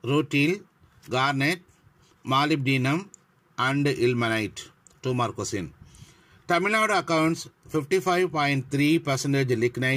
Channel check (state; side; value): identical; both; correlation 1.00